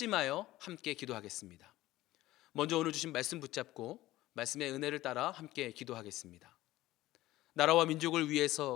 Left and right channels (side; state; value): right; quieter; 16.6 dB